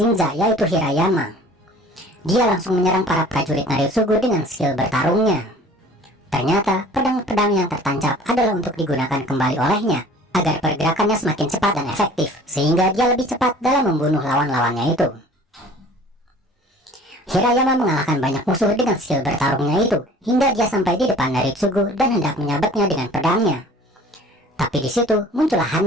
yaitu Hirayama. Dia langsung menyerang para prajurit Naritsugu dengan skill bertarungnya. Ternyata pedang-pedang yang tertancap adalah untuk digunakan kembali olehnya, agar pergerakannya semakin cepat dan efektif, sehingga dia lebih cepat dalam membunuh lawan-lawannya itu. Hirayama mengalahkan banyak musuh dengan skill bertarungnya itu, hingga dia sampai di depan Naritsugu dan hendak menyabetnya dengan pedangnya. Tapi di situ muncullah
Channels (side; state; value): both; normal; correlation 0.48